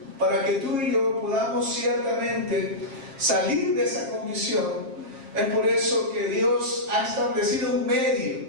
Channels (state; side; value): late; left; 7.4 ms